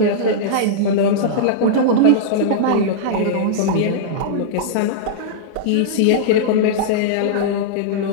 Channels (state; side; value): different; both; correlation -0.03